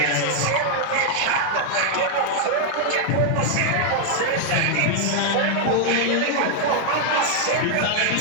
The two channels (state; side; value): different; both; correlation 0.00